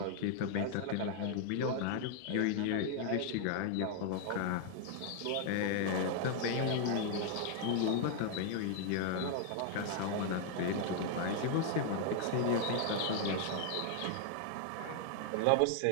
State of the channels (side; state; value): both; different; correlation 0.00